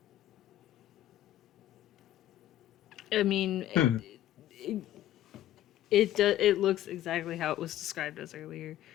I mean, it looks exactly how it was described as earlier.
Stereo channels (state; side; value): quieter; right; 13.0 dB